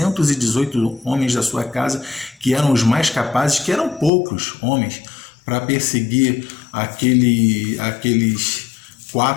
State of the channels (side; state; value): right; drops out; at 4.1 s